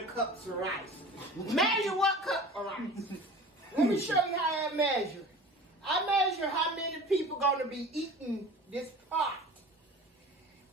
cups of rice. Measure what cup of rice? Let me show you how I measure. I measure how many people gonna be eating this pot.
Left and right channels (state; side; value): normal; both; correlation 0.40